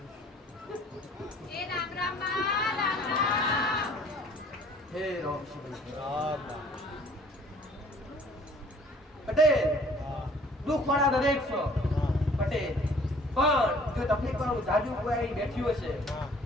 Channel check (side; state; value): both; normal; correlation 0.55